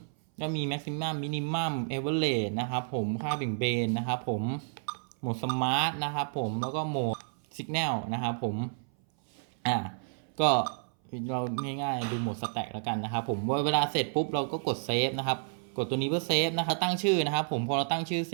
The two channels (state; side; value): silent; left; 57 dB below the other